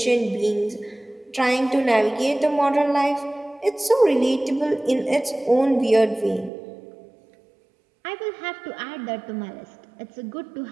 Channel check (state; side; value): drops out; left; at 6.5 s